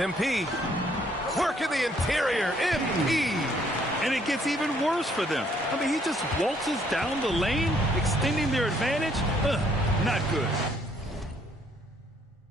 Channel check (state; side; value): normal; both; correlation 0.66